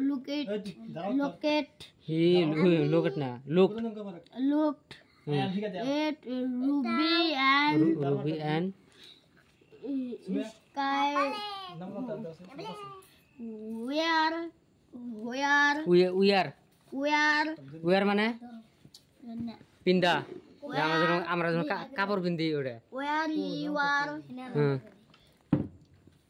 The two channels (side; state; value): both; identical; correlation 1.00